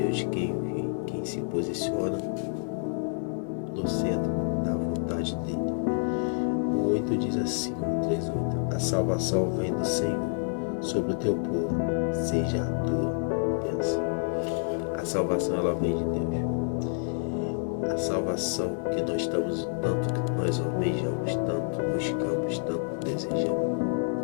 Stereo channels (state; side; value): silent; right; digital silence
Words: quem se posiciona no centro da vontade dele. O 8 diz assim, o 3:8: a salvação vem do Senhor sobre o teu povo, seja a tua bênção. A salvação, ela vem de Deus. A salvação que nós estamos, tanto que nós almejamos, tanto buscamos, tanto desejamos,